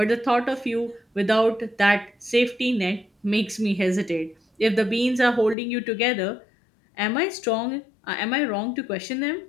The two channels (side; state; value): right; drops out; at 5.6 s